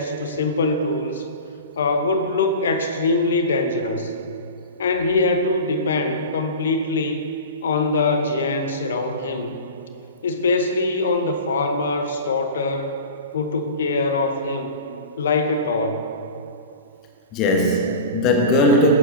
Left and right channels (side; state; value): both; inverted; correlation -0.33